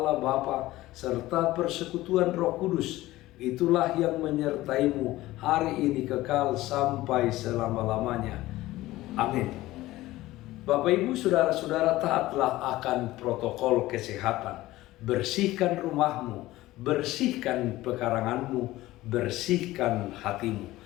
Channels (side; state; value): right; quieter; 17.2 dB